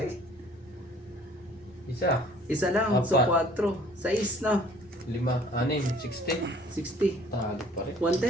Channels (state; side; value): normal; both; correlation 0.54